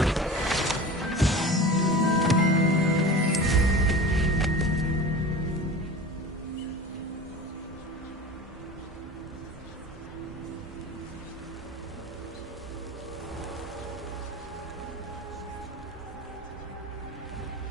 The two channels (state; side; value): normal; both; correlation 0.35